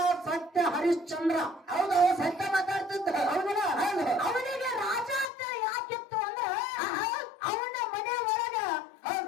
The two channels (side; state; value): right; drops out; at 5.2 s